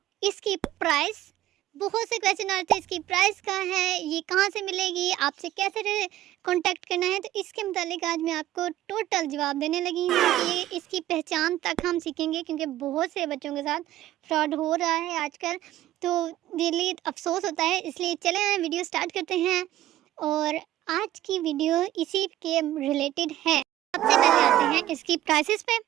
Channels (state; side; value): quieter; left; 14.2 dB